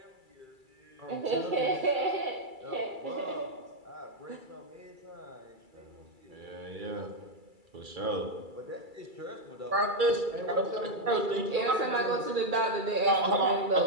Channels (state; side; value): late; left; 2.3 ms